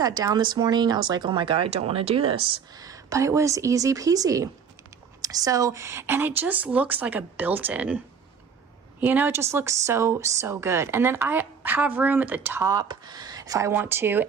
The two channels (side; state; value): left; quieter; 6.6 dB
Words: down this morning, I was like, oh my God, I don't want to do this, but it was easy peasy. So, and it just looks like a built-in. You know, it just looks so good. And then I have room at the top if I want to.